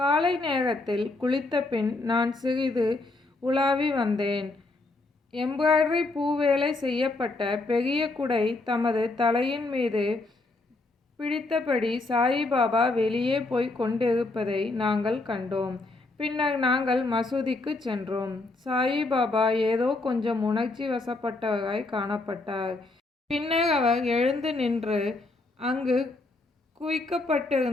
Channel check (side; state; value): right; quieter; 3.2 dB